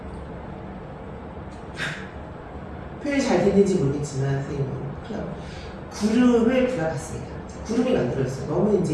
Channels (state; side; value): identical; both; correlation 1.00